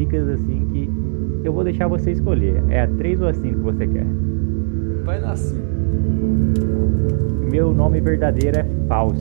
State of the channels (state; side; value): silent; left; digital silence